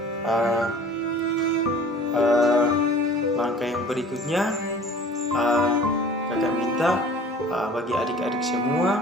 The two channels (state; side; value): normal; both; correlation 0.46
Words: langkah yang berikutnya kakak minta bagi adik-adik semua